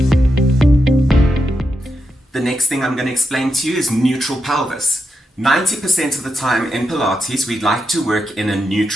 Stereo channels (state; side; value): normal; both; correlation 0.86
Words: The next thing I'm going to explain to you is neutral pelvis. 90% of the time in Pilates, we like to work in a